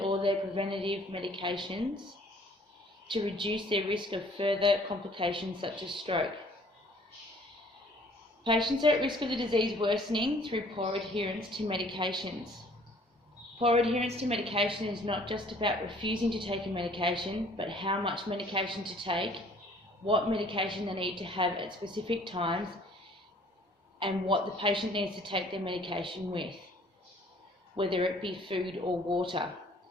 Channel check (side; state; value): both; normal; correlation 0.56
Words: their preventative medications to reduce their risk of further complications such as stroke. Patients are at risk of the disease worsening through poor adherence to medications. Poor adherence to medication is not just about refusing to take a medication, but how much medication to take, what medication they need to have at specific times, and what the patient needs to take their medication with, whether it be food or water.